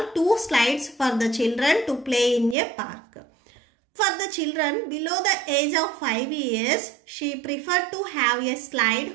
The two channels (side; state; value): left; drops out; at 2.6 s